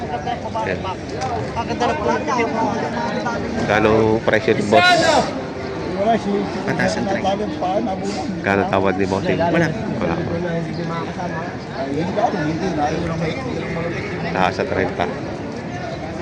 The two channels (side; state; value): both; identical; correlation 1.00